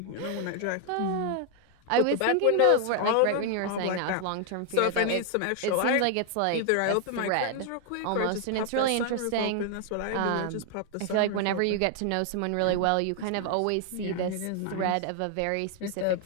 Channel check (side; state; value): both; different; correlation 0.00